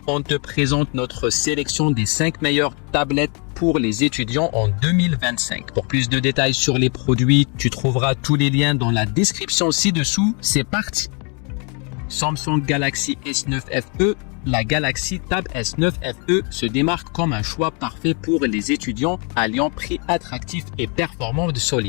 on te présente notre sélection des 5 meilleures tablettes pour les étudiants en 2025. Pour plus de détails sur les produits, tu trouveras tous les liens dans la description ci-dessous. C'est parti! Samsung Galaxy S9 FE. La Galaxy Tab S9 FE se démarque comme un choix parfait pour les étudiants, alliant prix attractif et performance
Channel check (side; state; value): right; quieter; 35.4 dB